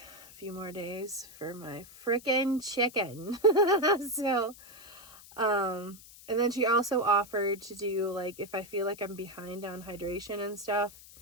a few more days for my frickin' chicken. So, and then she also offered to do, like, if I feel like I'm behind on hydration and stuff,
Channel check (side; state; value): left; noise; hiss, 20 dB below the sound